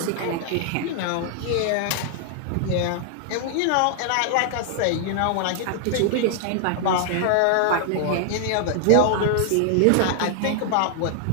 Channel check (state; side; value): different; both; correlation 0.00